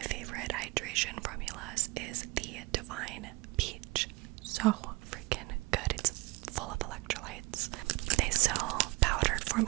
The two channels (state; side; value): quieter; left; 23.6 dB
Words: hydration formulas is the Divine Peach. So freaking good. It's full of electrolytes. They sell powdered